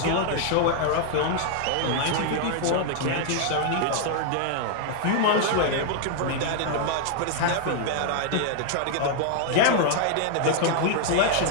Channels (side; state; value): both; different; correlation 0.00